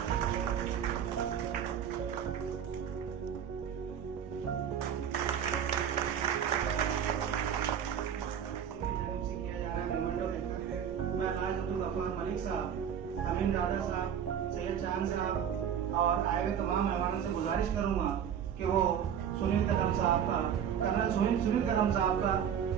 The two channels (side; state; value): left; quieter; 8.6 dB